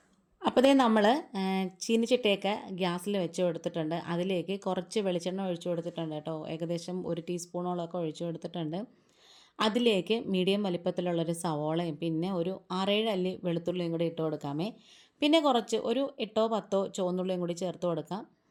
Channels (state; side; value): identical; both; correlation 1.00